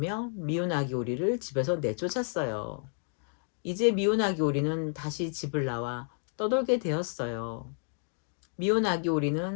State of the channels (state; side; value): silent; right; 56 dB below the other